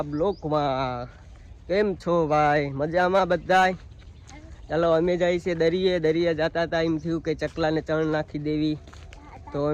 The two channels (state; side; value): identical; both; correlation 1.00